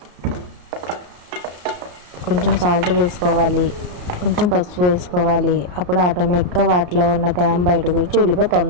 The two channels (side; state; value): left; late; 33 ms